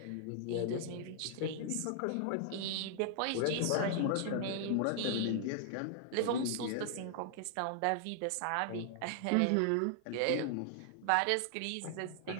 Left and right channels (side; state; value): both; different; correlation 0.00